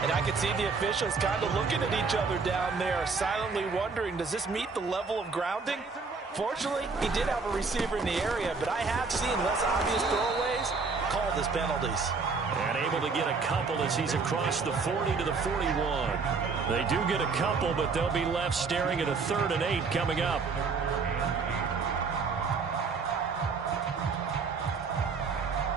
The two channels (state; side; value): quieter; left; 4.7 dB